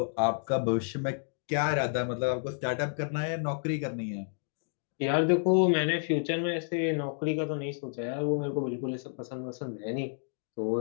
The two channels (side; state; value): right; silent; digital silence